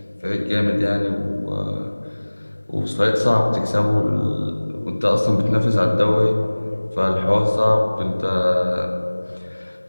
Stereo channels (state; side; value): inverted; both; correlation -1.00